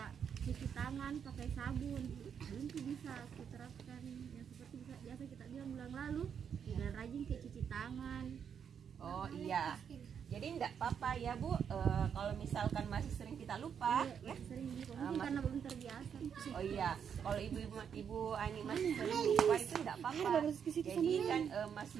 cuci tangan pakai sabun. Itu bisa diterapkan yang seperti biasa kita bilang bulan lalu. Dan rajin kayak cuci tangan. Oh iya. Jadi enggak apa-apa ya Bu, kalau misalkan masih sering kita lupa, ya. Sering mungkin karena belum terbiasa. Oh iya, kalau ibu Ani masih sering lupa itu enggak apa-apa. Jadi kan masih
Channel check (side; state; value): left; quieter; 7.6 dB